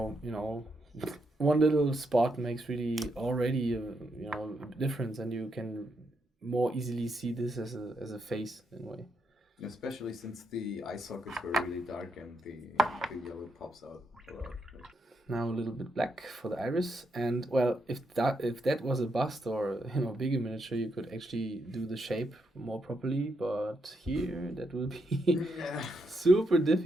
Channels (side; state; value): both; normal; correlation 0.80